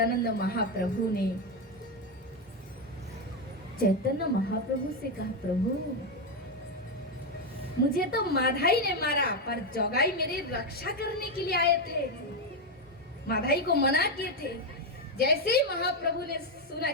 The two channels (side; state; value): both; normal; correlation 0.07